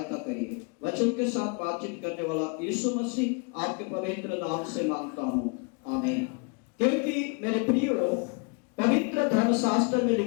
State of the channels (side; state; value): right; quieter; 33.7 dB